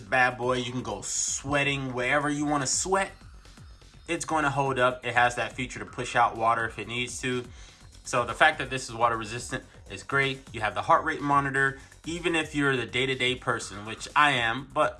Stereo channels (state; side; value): identical; both; correlation 1.00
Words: bad boy. You can go sweating wherever you want to sweat. It's going to hold up. It has that feature to push out water if it needs to. So the fact that this is water resistant is great. You have the heart rate monitor. Even if you're the day-to-day person, which I am, but